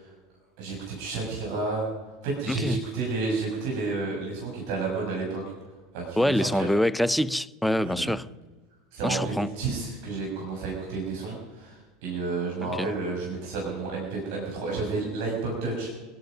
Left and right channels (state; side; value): normal; both; correlation 0.63